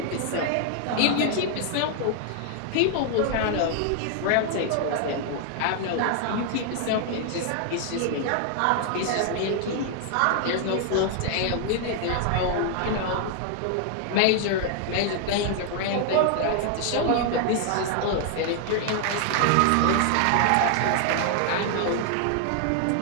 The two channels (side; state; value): both; different; correlation 0.00